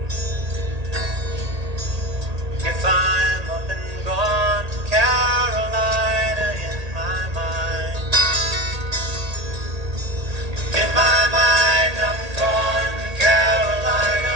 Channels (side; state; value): left; late; 1.8 ms